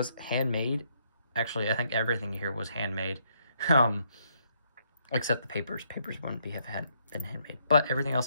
handmade. Actually, I think everything here was handmade, except the papers. Papers wouldn't have been handmade, but everything else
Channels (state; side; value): inverted; both; correlation -0.73